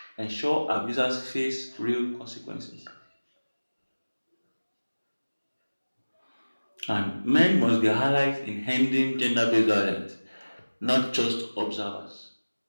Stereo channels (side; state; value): both; inverted; correlation -1.00